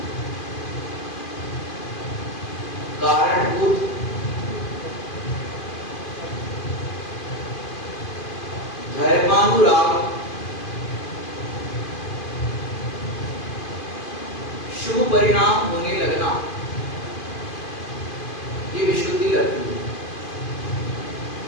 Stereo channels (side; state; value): right; late; 2.5 ms